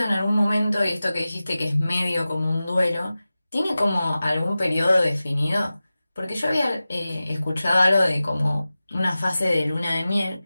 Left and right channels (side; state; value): both; inverted; correlation -0.96